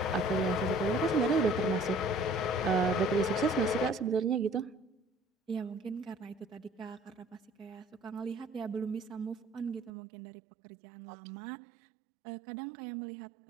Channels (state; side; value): drops out; left; at 9.9 s